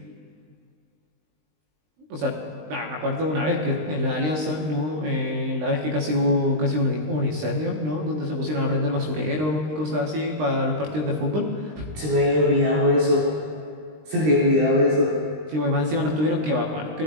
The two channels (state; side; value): late; left; 20 ms